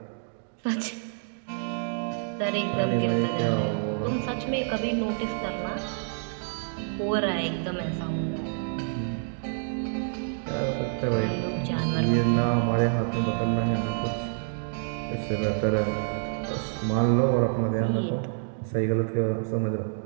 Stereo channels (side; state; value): left; silent; digital silence